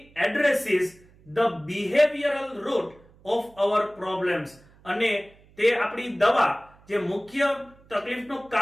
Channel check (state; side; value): noise; right; hum, 28 dB below the sound